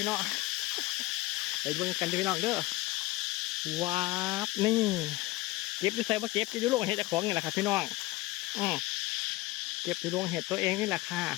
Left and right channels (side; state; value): right; quieter; 19.1 dB